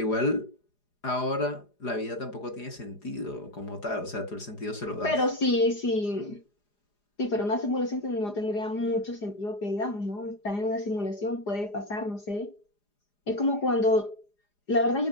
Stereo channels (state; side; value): late; right; 4.9 ms